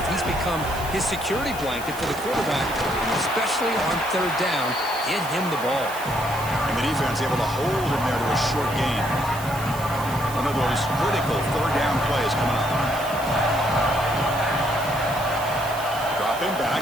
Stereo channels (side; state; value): right; noise; hiss, 14 dB below the sound